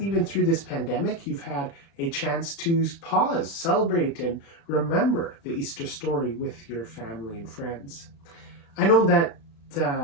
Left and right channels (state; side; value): late; right; 36 ms